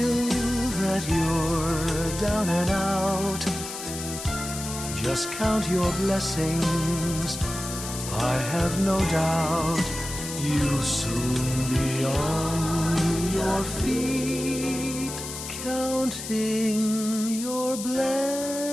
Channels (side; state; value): left; noise; hiss, 8 dB below the sound